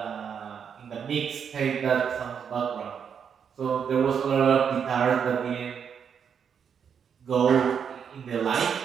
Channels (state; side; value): quieter; left; 7.3 dB